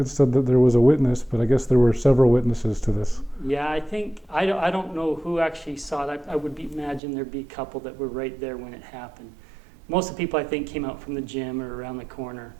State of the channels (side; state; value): left; drops out; at 7.0 s